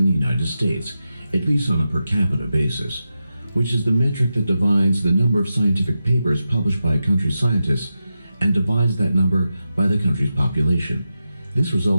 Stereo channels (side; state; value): both; inverted; correlation -0.90